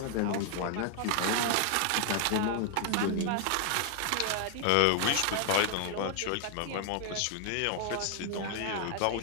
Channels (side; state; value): both; different; correlation 0.00